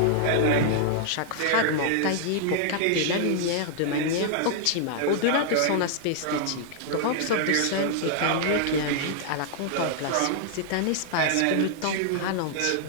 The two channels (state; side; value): different; both; correlation -0.01